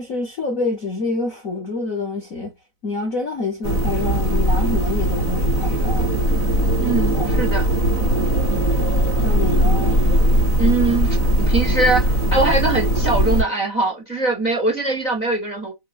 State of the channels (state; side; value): late; right; 4.0 ms